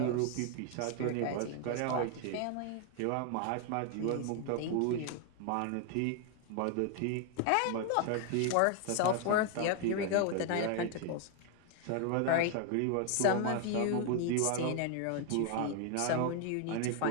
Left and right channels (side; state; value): both; different; correlation 0.00